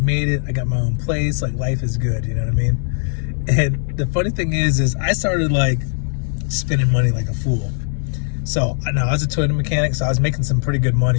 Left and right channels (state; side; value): silent; right; 66 dB below the other